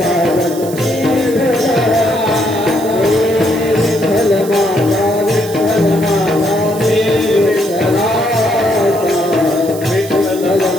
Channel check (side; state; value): right; noise; hiss, 15 dB below the sound